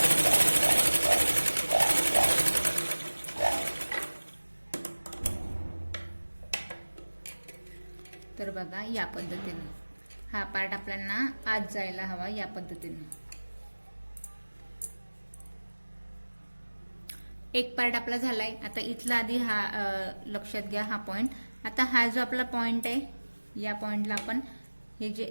तर बघा या पद्धतीने हा पार्ट आपल्याला आत जायला हवा. या पद्धतीने एक पार्ट आपला झालाय. आता इथला आधी हा लक्षात घ्या हा पॉइंट. आता हा जो आपला पॉइंट आहे या पॉइंटला आपण हे जे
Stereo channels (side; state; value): both; inverted; correlation -1.00